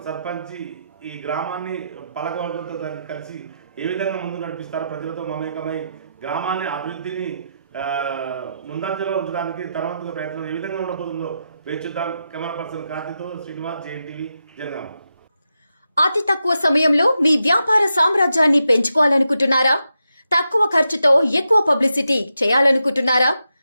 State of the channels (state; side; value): inverted; both; correlation -0.86